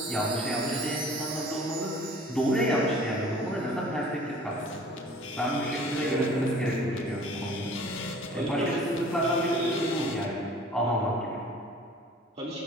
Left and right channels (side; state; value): both; normal; correlation 0.48